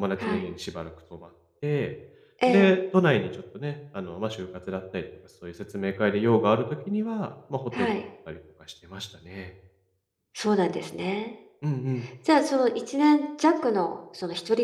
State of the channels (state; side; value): identical; both; correlation 1.00